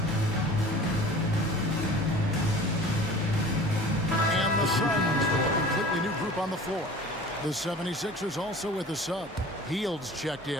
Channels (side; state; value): both; normal; correlation 0.42